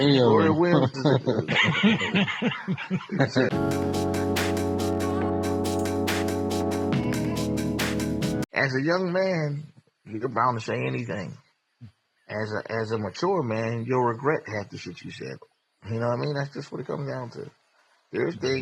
of them. That's it. As a young man, you're bound to say anything. As a mature man, you'll regret half the shit you said. You know what I mean? That's just what it comes down to. There's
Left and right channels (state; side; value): identical; both; correlation 1.00